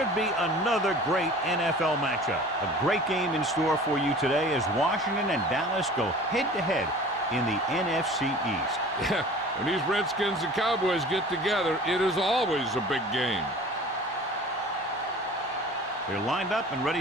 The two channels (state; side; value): normal; both; correlation 0.43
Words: be another great NFL matchup. A great game in store for you today as Washington and Dallas go head-to-head in the NFC East. Yeah, when these Redskins and Cowboys get together, it is always a big game. They're lined up and ready